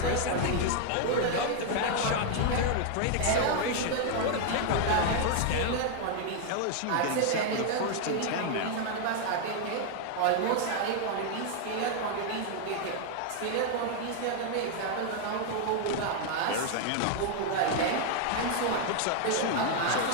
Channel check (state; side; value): different; both; correlation 0.00